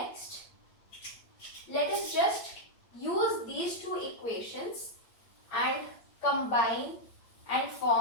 let us just use these two equations and combine and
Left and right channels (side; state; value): right; late; 8.7 ms